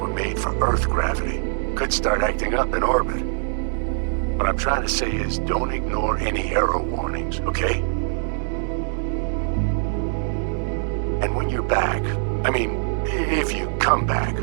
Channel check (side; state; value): left; silent; digital silence